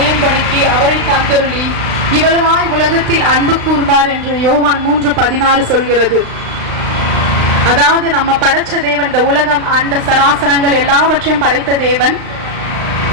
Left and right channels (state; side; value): late; left; 35 ms